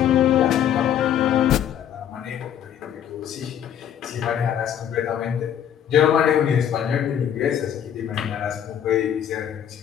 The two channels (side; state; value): right; quieter; 9.7 dB